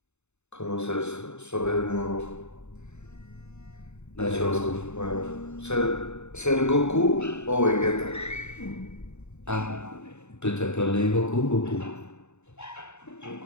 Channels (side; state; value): right; late; 0.82 ms